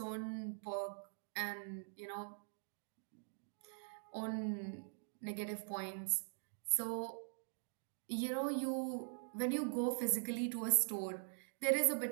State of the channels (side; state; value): left; silent; digital silence